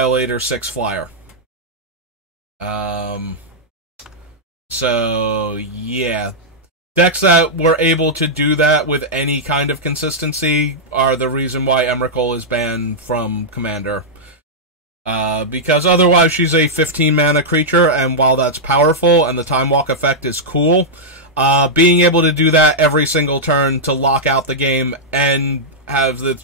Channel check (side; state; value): both; normal; correlation -0.08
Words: 6 flyer. So, yeah. Decks that were able to do that with any kind of consistency are the reason why Emrakul is banned from Commander. Because otherwise she's a 15 mana creature, and while that's powerful and the Time Walk effect is cool, being able to do that every single turn to lock out the game and have